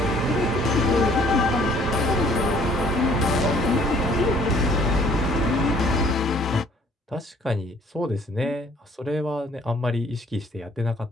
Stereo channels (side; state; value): both; normal; correlation 0.59